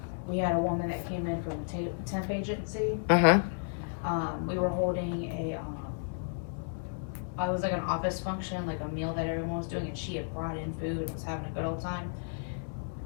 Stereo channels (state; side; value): silent; right; digital silence